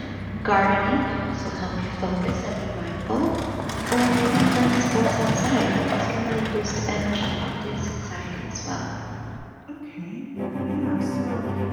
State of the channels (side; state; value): both; identical; correlation 1.00